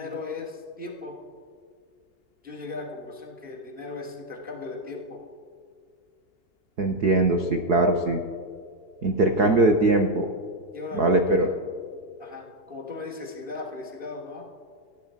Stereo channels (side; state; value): left; late; 2.8 ms